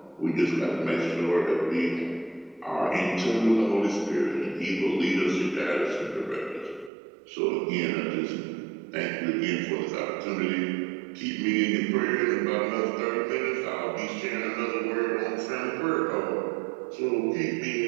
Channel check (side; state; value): left; drops out; at 6.9 s